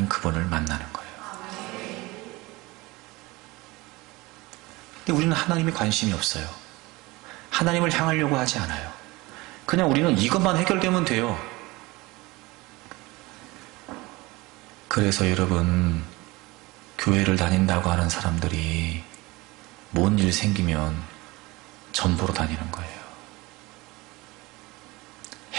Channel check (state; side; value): quieter; left; 22.0 dB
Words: 그분을 만나는 거예요. 근데 우리는 하나님에 관심이 없어요. 하나님을 향하려고 하지 않아요. 그냥 우리는 이것만 해결되면 돼요. 그래서 여러분, 교회를 다닌다고 하는 사람들이 뭔 일 생기면 전보로 다니는 거예요.